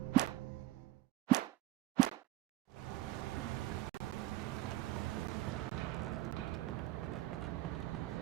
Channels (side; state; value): left; quieter; 15.6 dB